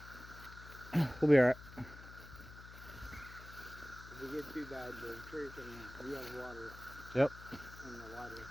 We'll be alright. If we get too bad, the church and we have water. Yep. And the water.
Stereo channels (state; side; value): noise; left; hum, 15 dB below the sound